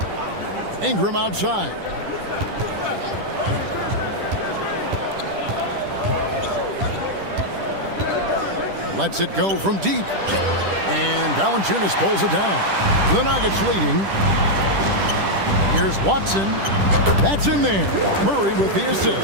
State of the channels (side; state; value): left; late; 10 ms